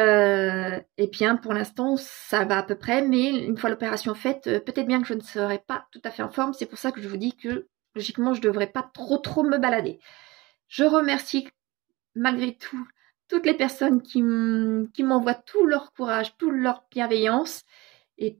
bien pour l'instant, ça va à peu près. Mais une fois l'opération faite, peut-être bien que je ne serai pas tout à fait en forme. C'est pour ça que je vous dis que logiquement, je ne devrais pas trop me balader. Je remercie malgré tout toutes les personnes qui m'envoient tout leur courage, toute leur bienveillance et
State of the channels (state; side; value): quieter; left; 21.8 dB